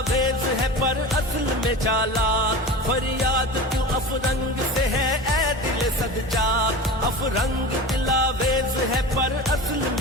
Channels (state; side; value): normal; both; correlation 0.31